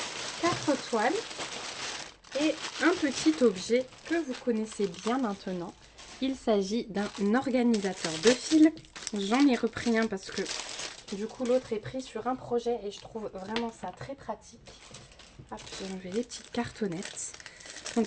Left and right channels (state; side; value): identical; both; correlation 1.00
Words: 4 toiles et un petit objet que vous connaissez bien maintenant. Il s'agit d'un organisateur de fil. J'en ai repris un parce que du coup l'autre est pris sur un projet et je trouve vraiment ça très pratique. Hop, j'ai enlevé les petites cartonnettes.